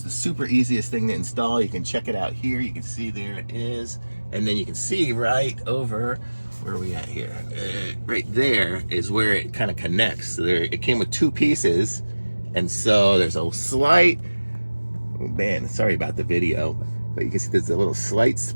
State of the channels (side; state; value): both; inverted; correlation -1.00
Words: the super easiest thing to install. You can check it out here. You can see there it is, and then you can see right over, where are we at here? Right there is where it kind of connects. So there, it came with two pieces, and so there's a slight, oh man, sorry about the video, but you can see there's a little slight